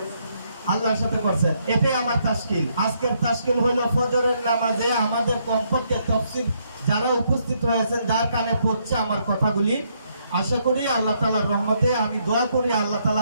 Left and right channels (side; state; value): both; inverted; correlation -0.74